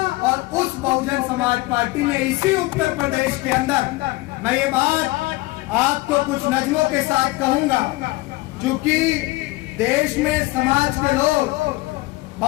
और उस बहुजन समाज पार्टी ने इसी उत्तर प्रदेश के अंदर, मैं ये बात आपको कुछ नज़्मों के साथ कहूंगा, क्योंकि देश में समाज के लोग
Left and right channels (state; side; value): quieter; right; 20.9 dB